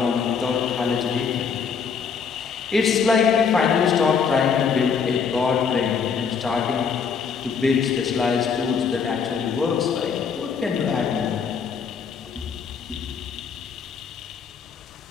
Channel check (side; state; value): right; quieter; 6.2 dB